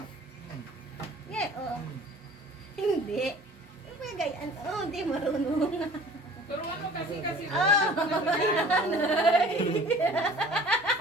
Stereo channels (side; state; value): both; normal; correlation 0.48